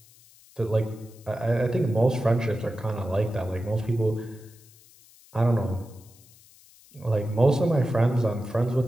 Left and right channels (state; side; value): noise; left; hiss, 26 dB below the sound